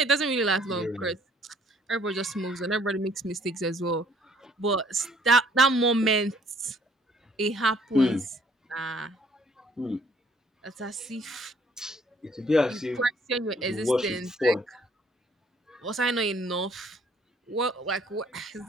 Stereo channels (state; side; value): normal; both; correlation 0.61